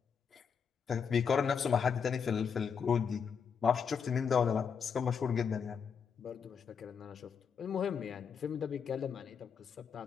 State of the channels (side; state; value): right; quieter; 6.6 dB